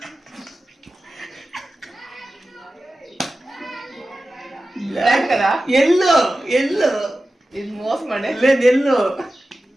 బ్లాక్ కదా? ఎల్లో. ఇది మోసం అండి. లేదు, ఎల్లో.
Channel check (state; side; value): normal; both; correlation 0.94